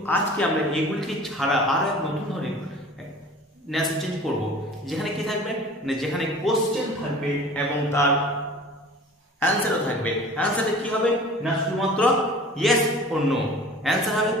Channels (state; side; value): normal; both; correlation 0.43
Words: আজকে আমরা এগুলিকে ছাড়া আরো এক নতুন ধরনের narration চেঞ্জ করব, যেখানে কি থাকবে না, যেখানে কোশ্চেন থাকবে এবং তার অ্যানসারও থাকবে। অ্যানসারে কি হবে না, শুধুমাত্র ইয়েস অর নো অ্যানসার হবে